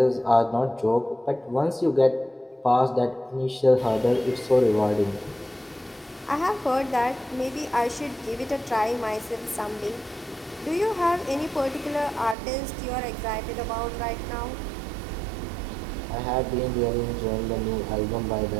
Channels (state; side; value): drops out; left; at 12.4 s